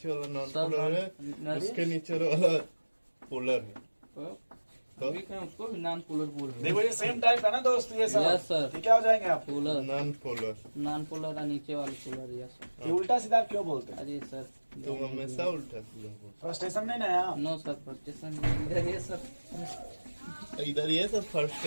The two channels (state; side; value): inverted; both; correlation -1.00